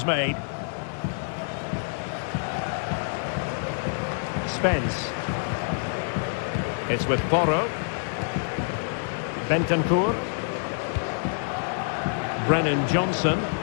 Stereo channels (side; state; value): right; silent; 60 dB below the other